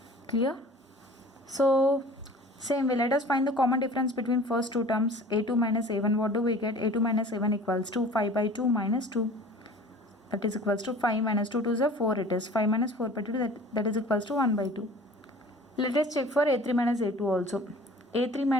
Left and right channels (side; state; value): both; normal; correlation 0.45